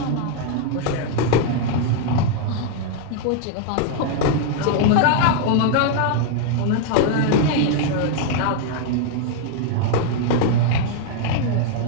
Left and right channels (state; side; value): different; both; correlation 0.00